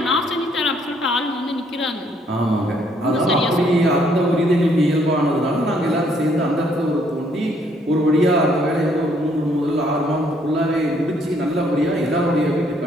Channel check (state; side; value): normal; both; correlation 0.67